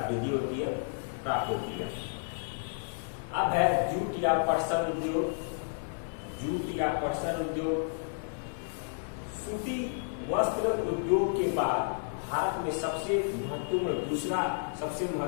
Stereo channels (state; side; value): silent; right; 57 dB below the other